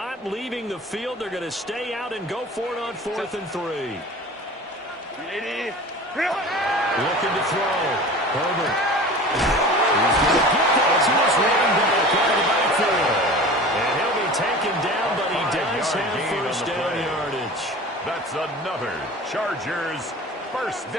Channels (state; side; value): normal; both; correlation 0.38